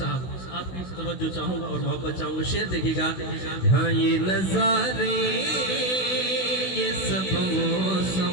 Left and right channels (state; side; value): late; right; 16 ms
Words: आपकी तवज्जो चाहूंगा और मोहब्बत चाहूंगा। शेर देखिएगा। हाँ ये नजारे ये सब